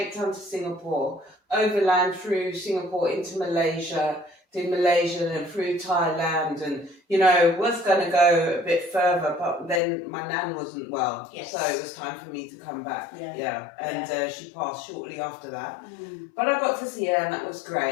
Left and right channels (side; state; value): right; drops out; at 9.8 s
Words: Town to Singapore, overland through Singapore into Malaysia, did Malaysia and through Thailand, and was going to go a bit further, but then my nan wasn't well, so it was time for me to come back. And she passed shortly after that. But I got to see her, and that was